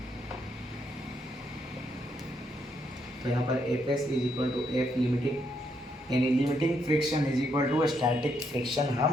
तो यहाँ पर FS is equal to F limiting, यानी limiting friction is equal to static friction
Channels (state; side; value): normal; both; correlation 0.76